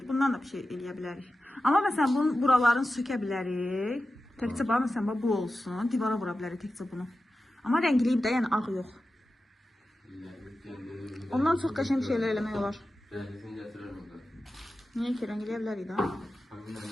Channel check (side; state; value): both; normal; correlation 0.93